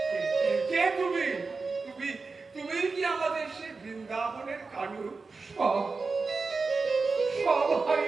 কে তুমি? তুমি তুমি কি আমাদের সে বৃন্দাবনের কানু? সব সব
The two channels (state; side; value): quieter; left; 4.2 dB